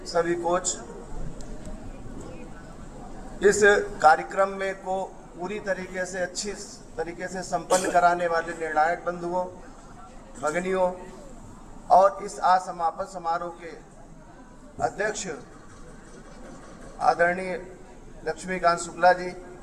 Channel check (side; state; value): both; identical; correlation 1.00